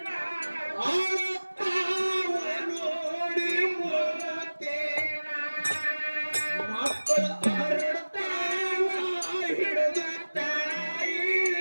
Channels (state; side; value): inverted; both; correlation -1.00